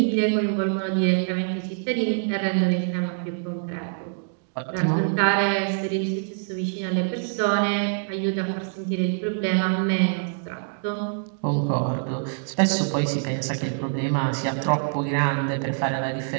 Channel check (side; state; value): left; silent; digital silence